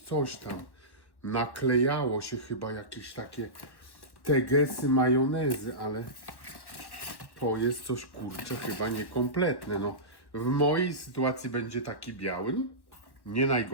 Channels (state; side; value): late; right; 1.1 ms